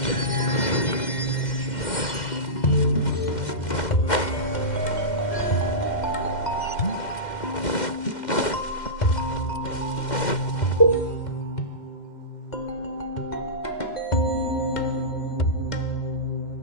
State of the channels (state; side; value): late; right; 2.1 ms